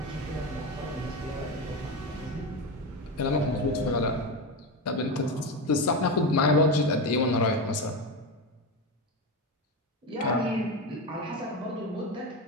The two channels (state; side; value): normal; both; correlation 0.18